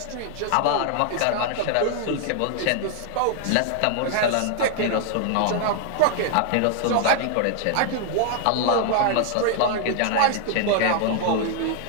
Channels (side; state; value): both; different; correlation 0.00